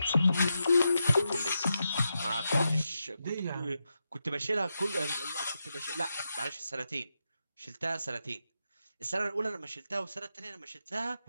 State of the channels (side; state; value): both; inverted; correlation -0.87